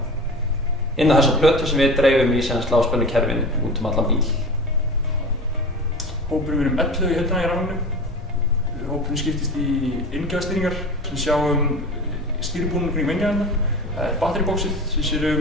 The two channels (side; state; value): both; normal; correlation 0.33